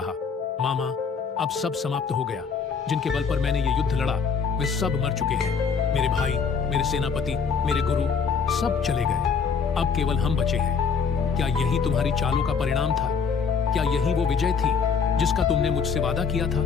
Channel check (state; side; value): quieter; right; 5.8 dB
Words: मामा, अब सब समाप्त हो गया। जिनके बल पर मैंने ये युद्ध लड़ा वे सब मर चुके हैं। मेरे भाई, मेरे सेनापति, मेरे गुरु सब चले गए। अब केवल हम बचे हैं। क्या यही तुम्हारी चालों का परिणाम था? क्या यही वो विजय थी जिसका तुमने मुझसे वादा किया